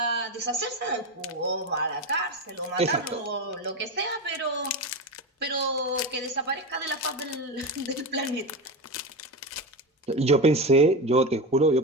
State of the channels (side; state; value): both; normal; correlation 0.19